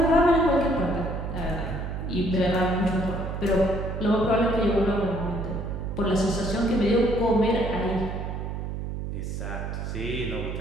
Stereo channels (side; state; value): right; noise; hum, 5 dB below the sound